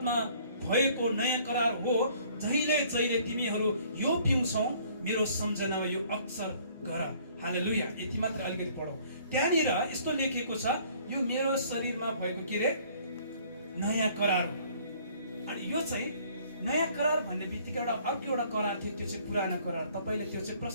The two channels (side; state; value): both; inverted; correlation -0.57